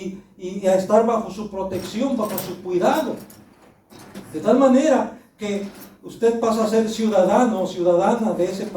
a estar bajo su protección, bajo su cuidado. De tal manera que usted pasa a ser ciudadano o ciudadana de ese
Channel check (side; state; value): both; identical; correlation 1.00